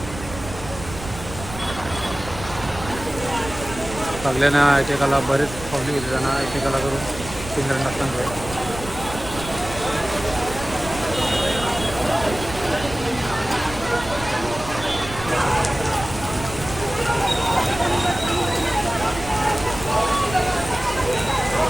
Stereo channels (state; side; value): noise; right; rumble, 12 dB below the sound